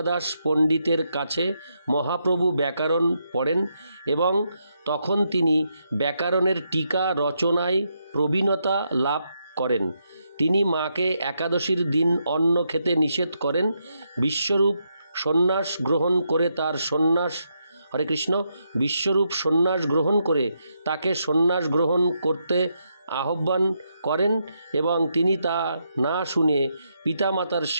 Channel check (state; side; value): inverted; both; correlation -0.80